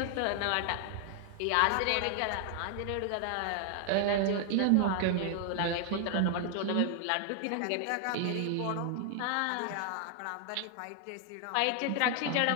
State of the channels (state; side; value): different; both; correlation 0.00